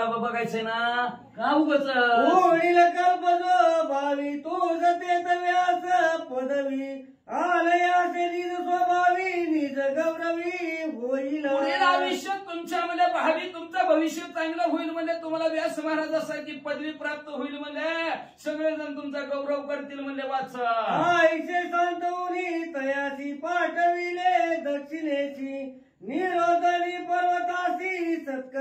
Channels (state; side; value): identical; both; correlation 1.00